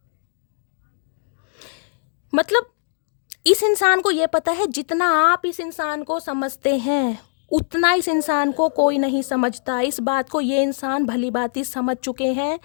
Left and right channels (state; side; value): silent; right; digital silence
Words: मतलब इस इंसान को ये पता है, जितना आप इस इंसान को समझते हैं उतना इस इंसान को कोई नहीं समझता। इस बात को ये इंसान भली भांति समझ चुके हैं।